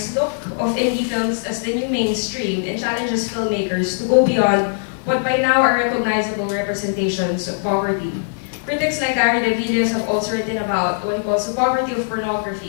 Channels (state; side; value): silent; right; digital silence